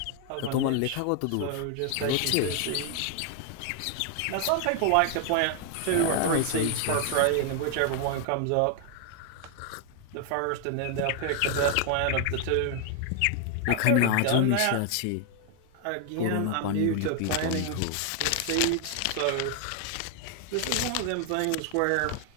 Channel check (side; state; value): both; different; correlation 0.00